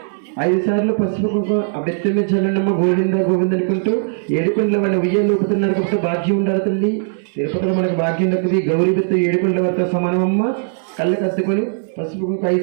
ఐదు సార్లు పసుపు కుంకుమ అభ్యర్థులు చల్లనమ్మ గోవింద గోవింద అనుకుంటూ ఏడుకొండల వాళ్ళ ఉయ్యాలు ఊపుతున్నారు కాబట్టి భాగ్యం ఉండాలి తల్లి. తిరుపతిలో మనకు భాగ్యం దక్కుది. గౌరీ బిత్తు ఏడుకొండల వద్ద సమానమమ్మ. కళ్ళు కత్తుకొని పసుపు కుంకుమ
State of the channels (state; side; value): silent; left; 67 dB below the other